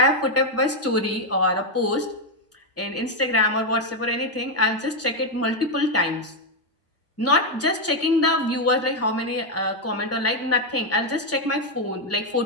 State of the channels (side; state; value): both; normal; correlation 0.03